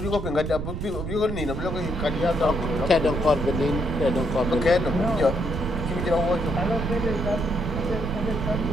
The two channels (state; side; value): noise; right; rumble, 5 dB below the sound